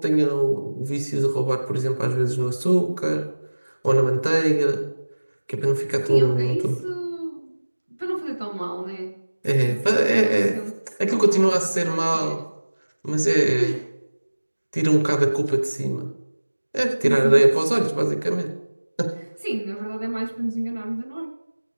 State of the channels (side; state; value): both; inverted; correlation -1.00